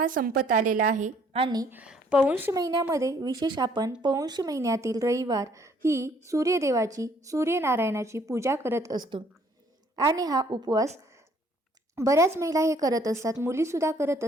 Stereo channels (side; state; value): both; normal; correlation 0.62